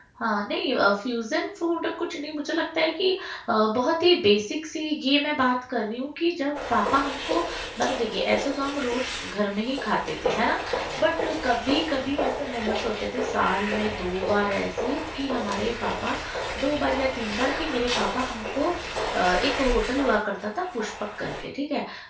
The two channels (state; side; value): identical; both; correlation 1.00